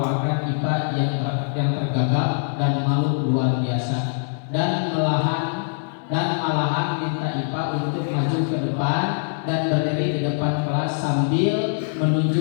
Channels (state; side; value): silent; right; digital silence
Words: IPA yang tergagap dan malu luar biasa, dan malahan minta IPA untuk maju ke depan dan berdiri di depan kelas sambil